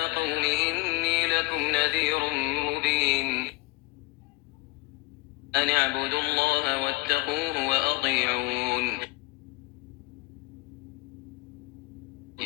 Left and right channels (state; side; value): quieter; right; 22.1 dB